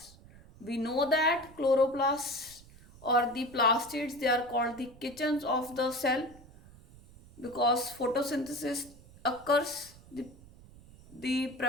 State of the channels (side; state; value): right; noise; rumble, 22 dB below the sound